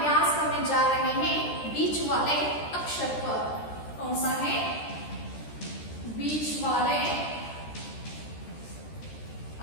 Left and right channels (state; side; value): late; right; 13 ms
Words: करने जा रहे हैं बीच वाले अक्षर पर। कौन सा है? बीच वाले